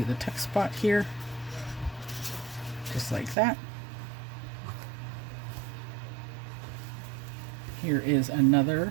the text spot here. Just like that. Here is another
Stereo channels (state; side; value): drops out; left; at 3.4 s